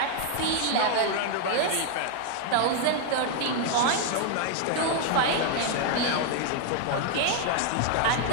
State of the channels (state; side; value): different; both; correlation 0.00